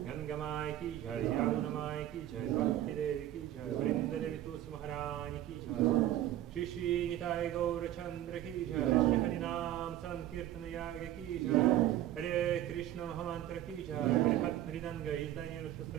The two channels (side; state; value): left; quieter; 13.0 dB